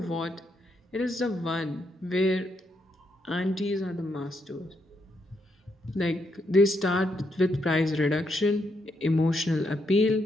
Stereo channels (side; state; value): both; normal; correlation 0.78